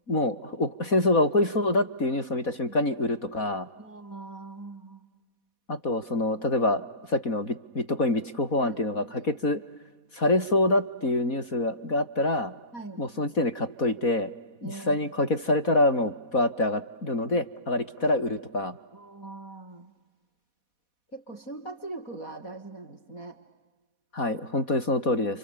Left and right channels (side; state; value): right; late; 4.1 ms